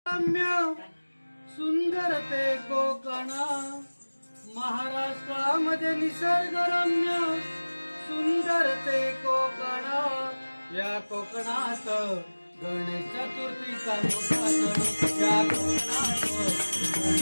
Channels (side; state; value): both; inverted; correlation -1.00